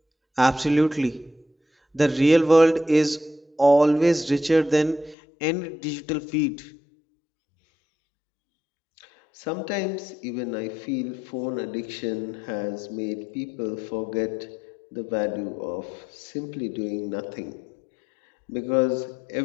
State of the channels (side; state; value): right; drops out; at 5.2 s